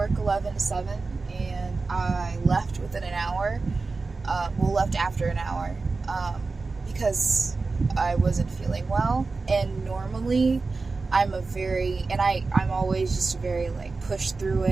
11 to 7, and I left within an hour. Left after an hour. Because I wasn't feeling well, and normally I'm always just very push through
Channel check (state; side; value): quieter; left; 3.9 dB